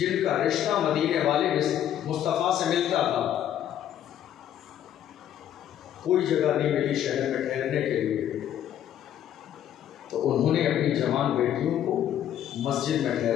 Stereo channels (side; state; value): right; quieter; 10.8 dB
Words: کا رشتہ مدینے والے مصطفیٰ سے ملتا تھا۔ کوئی جگہ نہیں ملی شہر میں ٹھہرنے کے لیے، تو انہوں نے اپنی جوان بیٹیوں کو مسجد میں